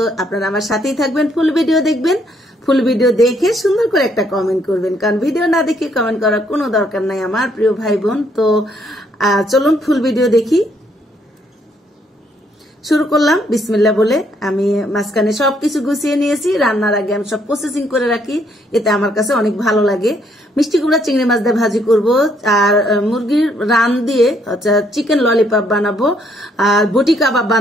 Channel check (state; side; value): normal; both; correlation 0.70